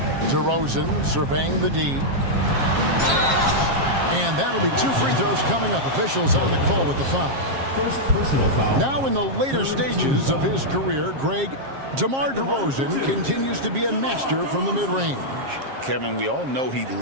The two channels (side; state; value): left; late; 7.4 ms